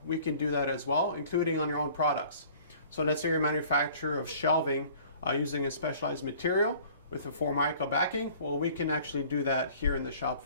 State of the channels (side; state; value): both; inverted; correlation -0.51